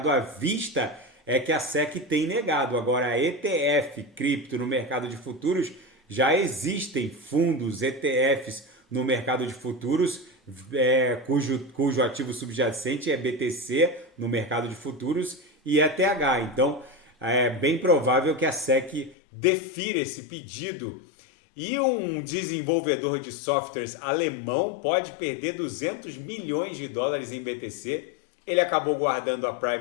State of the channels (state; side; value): drops out; right; at 19.2 s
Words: à vista é que a SEC tem negado. Agora, ETF cripto no mercado de futuros, já existem fundos ETFs no mercado de futuros, cujo ativo subjacente é BTC no mercado de futuros e ETH. Então, é bem provável que a SEC defira esse pedido. E um desenvolvedor de softwares alemão pode perder 200 milhões de dólares em BTC. Ele acabou guardando a